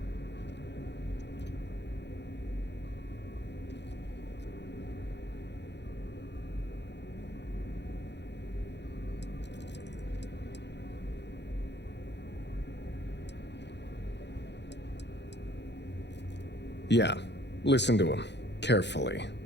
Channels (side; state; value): right; late; 0.50 ms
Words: Yeah, listen to him. Carefully.